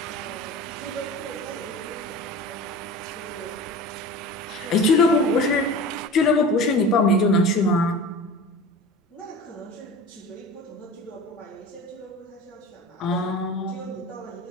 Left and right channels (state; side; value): normal; both; correlation 0.36